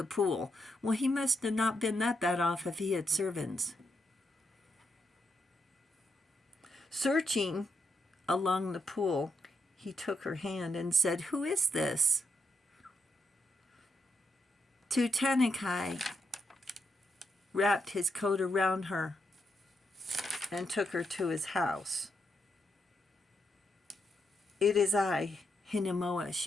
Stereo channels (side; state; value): both; normal; correlation 0.80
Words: pool. Well, he must have not been that bad off if he had servants. Searching along the pool, he took her hand and said, "Who is this?" Tutanekai wrapped his coat around her and took her to his house. "It is I, Hinemoa,"